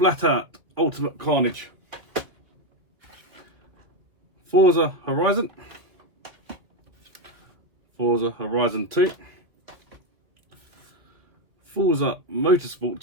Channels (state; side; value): late; left; 2.2 ms